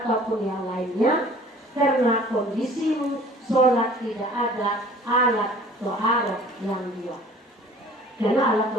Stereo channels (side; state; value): both; normal; correlation 0.49